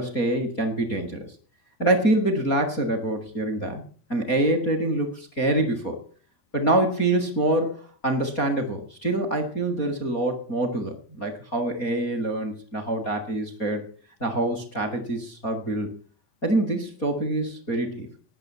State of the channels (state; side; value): late; right; 4.2 ms